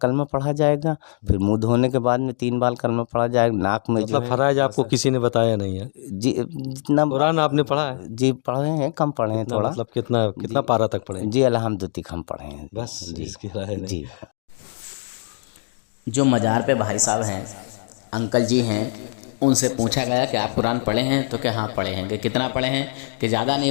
कलमा पढ़ा जाएगा, फिर मुंह धोने के बाद में 3 बार कलमा पढ़ा जाएगा, नाक में जो मतलब है फराइज आपको किसी ने बताया नहीं है? जी, जितना कुरान आपने पढ़ा है? जी पढ़े हैं, कम पढ़े हैं थोड़ा। मतलब कितना पारा तक पढ़े? जी, अल्हम्दुलिल्लाह तक हम पढ़े हैं बस जी। इसकी राय नहीं। जी, जो मज़ार पे भाई साहब हैं, अंकल जी हैं, उनसे पूछा गया कि आप कुरान पढ़े हैं, तो क्या हाँ पढ़े हैं, कि कितना पढ़े हैं, कि ज़्यादा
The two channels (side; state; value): right; silent; digital silence